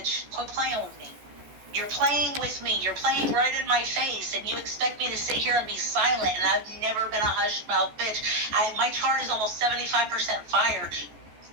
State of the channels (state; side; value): late; left; 14 ms